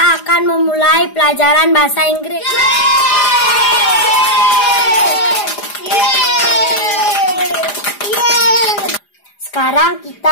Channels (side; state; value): right; late; 4.9 ms